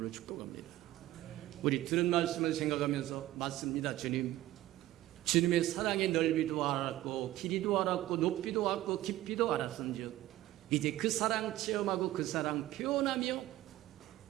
축복합니다. 우리 들은 말씀을 생각하면서 맞습니다. 주님의 사랑의 넓이도 알았고 길이도 알았고 높이도 알았고 깊이도 알았은즉 이제 그 사랑 체험하고 그 사랑 표현하며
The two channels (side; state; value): left; quieter; 15.3 dB